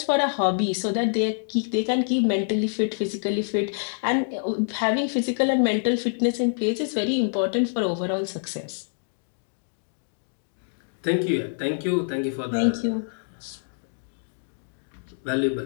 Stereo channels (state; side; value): silent; right; digital silence